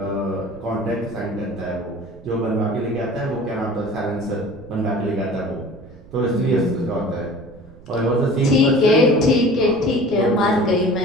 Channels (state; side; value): noise; right; rumble, 21 dB below the sound